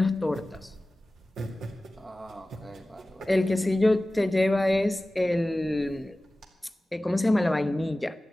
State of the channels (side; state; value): both; normal; correlation 0.97